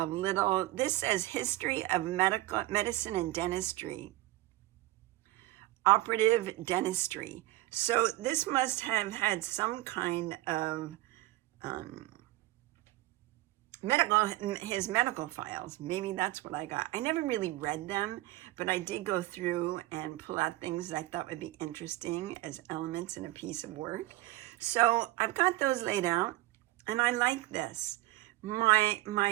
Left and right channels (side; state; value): left; quieter; 17.4 dB